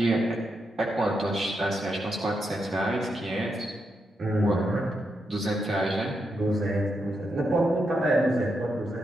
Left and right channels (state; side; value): normal; both; correlation 0.83